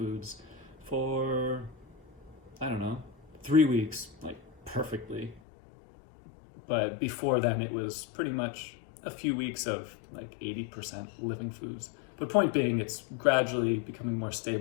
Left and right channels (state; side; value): drops out; right; at 5.4 s